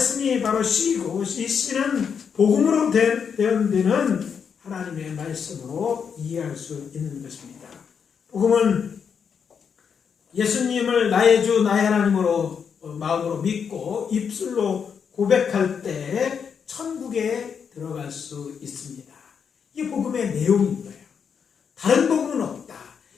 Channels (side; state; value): right; quieter; 6.8 dB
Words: 바로 씨이고 이 씨는 복음으로 되는 하나님의 말씀으로 이해할 수 있는 것입니다. 복음은 예수님을 나의 주 나의 하나님으로 마음으로 믿고 입술로 고백할 때 천국에 들어갈 수 있습니다. 이게 복음의 내용인 거예요. 다른 복음은 없다.